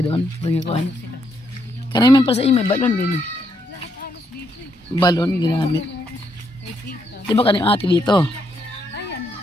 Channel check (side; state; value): both; normal; correlation 0.76